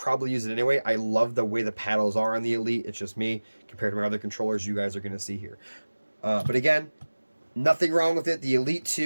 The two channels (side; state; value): both; inverted; correlation -1.00